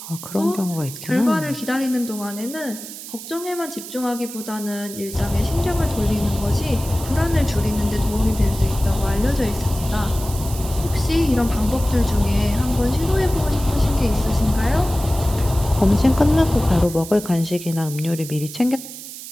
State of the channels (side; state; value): right; noise; hiss, 12 dB below the sound